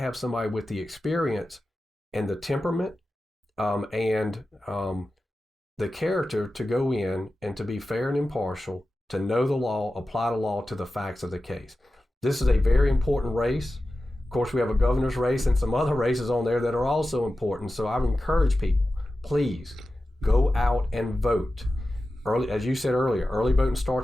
somebody with the experience and the temperament and the character to go in and to be fair and impartial, to know the law, apply the law to the facts of the case. This is a very important race. Of course, we have a governor's race and some other races on there that are also important. So I would encourage people, please go out and vote. Early, as you said earlier, early voting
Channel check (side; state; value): both; normal; correlation 0.94